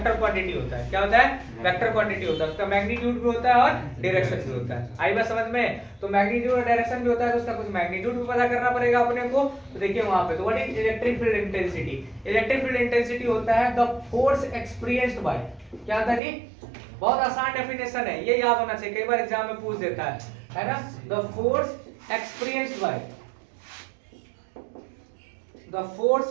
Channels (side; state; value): left; drops out; at 16.2 s